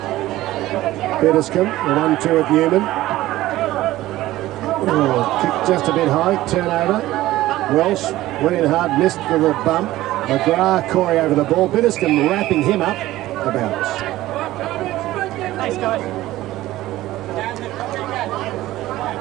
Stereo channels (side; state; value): left; quieter; 16.1 dB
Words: Bediscombe, the 1-2 of Newman. Oh, kicked just a bit high, turnover. Welsh went in hard, missed for the bump. McGrath, Corey over the ball. Bediscombe wrapping him up the bounce. Thanks, guys.